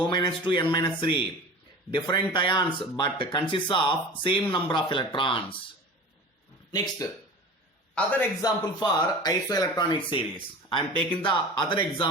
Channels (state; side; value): normal; both; correlation 0.36